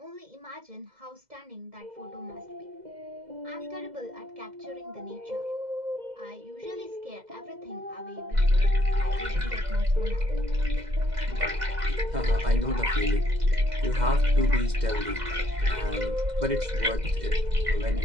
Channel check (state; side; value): late; left; 2.0 ms